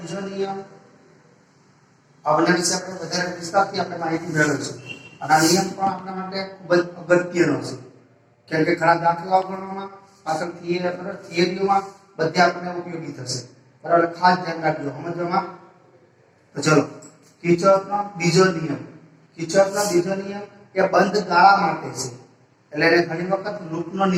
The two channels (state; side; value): identical; both; correlation 1.00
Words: નિયમ આવના વિશે આપણે વધારે વિસ્તારથી આપણે માહિતી મેળવીશું. અને આ નિયમ પણ આપણા માટે ખૂબ જ અગત્યનો છે, કેમ કે ઘણા દાખલાઓ ગણવામાં પાછળ થિયરીઓમાં બધે આપણને ઉપયોગી થશે. બરાબર? ખાસ ધ્યાન રાખજો સમજવામાં. તો ચલો, કિર્ચોફનો બીજો નિયમ. કિર્ચોફનો બીજો નિયમ એ બંધ ગાળા માટે છે, એટલે એને ઘણી વખત લૂપનો